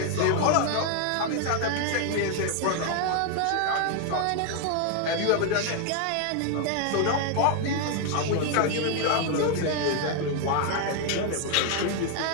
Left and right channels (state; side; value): different; both; correlation 0.01